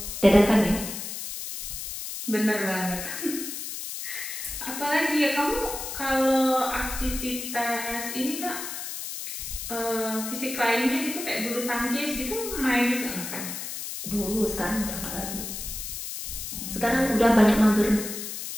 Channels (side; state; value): left; noise; hiss, 7 dB below the sound